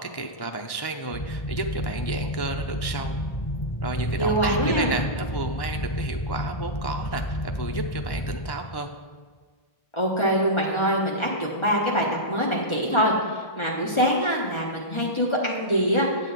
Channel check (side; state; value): right; late; 1.1 ms